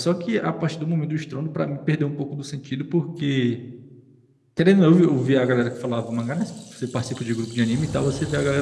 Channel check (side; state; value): both; identical; correlation 1.00